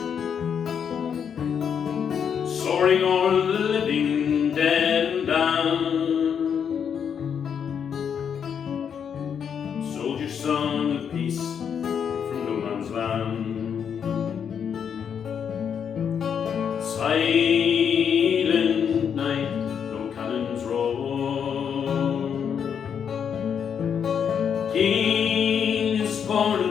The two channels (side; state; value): right; quieter; 7.6 dB